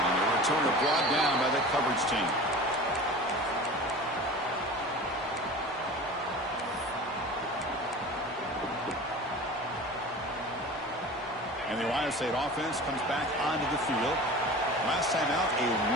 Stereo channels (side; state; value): both; normal; correlation 0.37